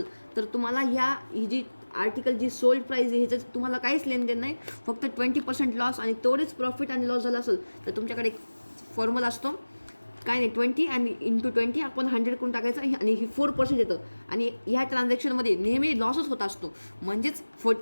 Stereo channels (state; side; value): inverted; both; correlation -1.00